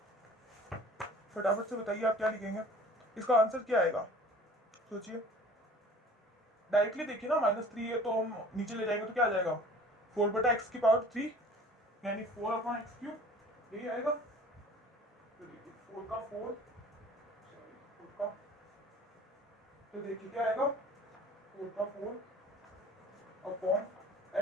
फटाफट से बताइए आप क्या लिखेंगे, इसका आंसर क्या आएगा, सोचिए। डायरेक्टली देखिए ना, -3 है तो हम नीचे ले जाएंगे तो क्या आ जाएगा, 4/x⁻3 यानी 4/x3, यही आएगा। तो देखिए 4 का 4, सॉरी 4 का, तो देखिए क्या आएगा, 4 का 4 अपॉन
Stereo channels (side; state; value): both; normal; correlation 0.47